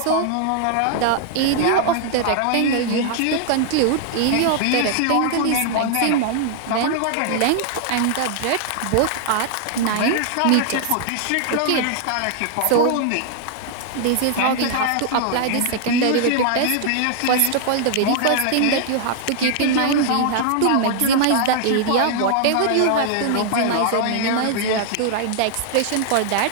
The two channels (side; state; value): both; different; correlation -0.01